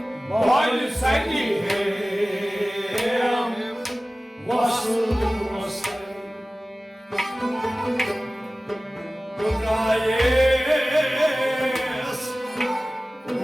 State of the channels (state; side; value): normal; both; correlation 0.97